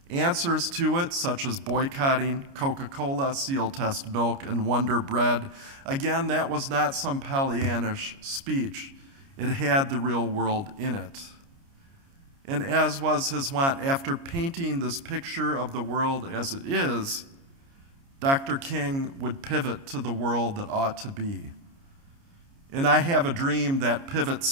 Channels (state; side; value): late; left; 29 ms